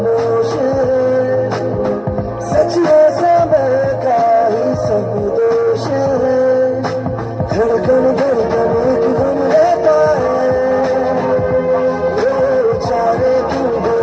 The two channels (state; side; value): identical; both; correlation 1.00